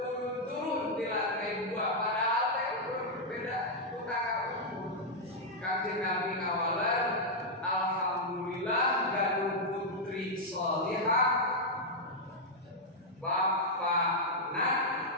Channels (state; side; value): normal; both; correlation -0.03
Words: di lantai 2 padahal teh beda utara. Kanjeng Nabi ngawalan, alhamdulillah ganu putri sholihah. Bapakna